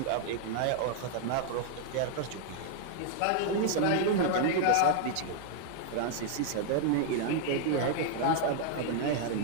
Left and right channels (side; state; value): both; different; correlation 0.00